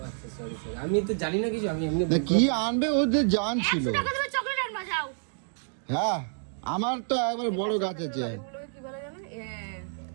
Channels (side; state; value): left; silent; digital silence